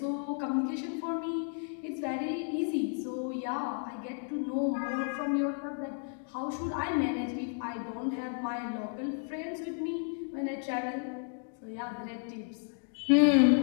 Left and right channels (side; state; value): right; silent; 56 dB below the other